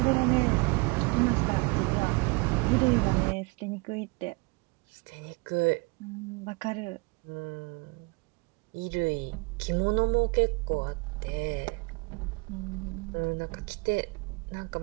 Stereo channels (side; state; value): left; quieter; 28.1 dB